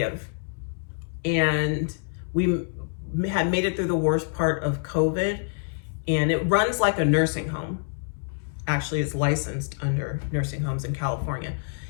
And we had made it through the worst part of COVID. And it runs like a nursing home. Actually, it's licensed under nursing homes in California.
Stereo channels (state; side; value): silent; right; 61 dB below the other